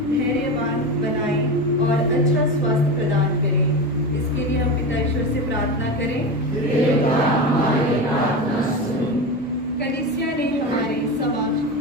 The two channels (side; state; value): both; normal; correlation 0.23